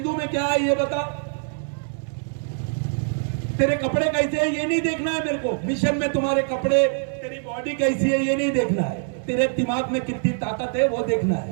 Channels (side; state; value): left; silent; digital silence